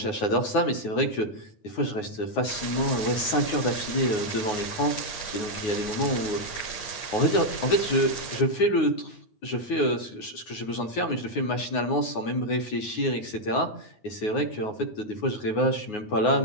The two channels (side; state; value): right; late; 9.5 ms